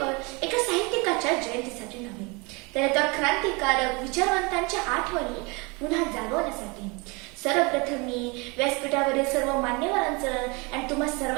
एका साहित्यिकाच्या जयंतीसाठी नव्हे, तर एका क्रांतिकारक विचारवंतांच्या आठवणी पुन्हा जागवण्यासाठी. सर्वप्रथम मी व्यासपीठावरील सर्व मान्यवरांचं आणि तुम्हा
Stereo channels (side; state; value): left; quieter; 28.4 dB